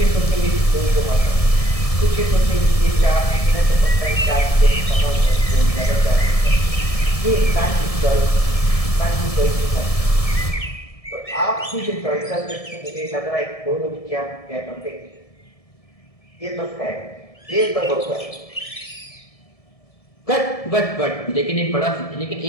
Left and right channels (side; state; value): right; late; 1.7 ms